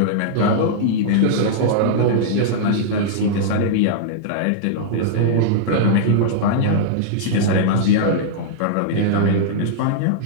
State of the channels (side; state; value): both; different; correlation -0.02